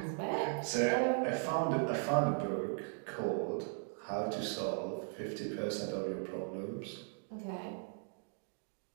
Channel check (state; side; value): silent; left; 53 dB below the other